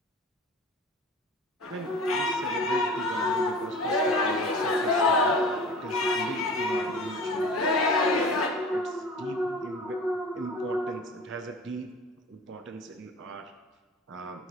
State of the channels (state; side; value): normal; both; correlation 0.39